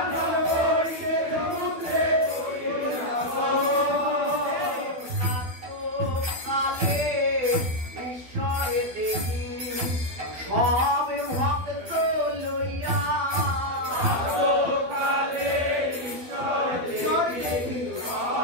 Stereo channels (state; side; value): late; left; 12 ms